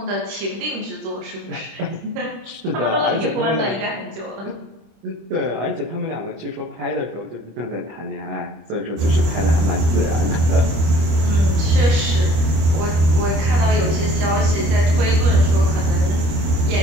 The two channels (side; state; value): left; late; 25 ms